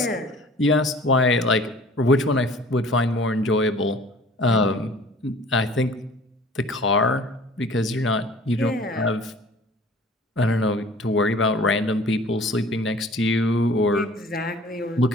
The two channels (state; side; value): normal; both; correlation 0.48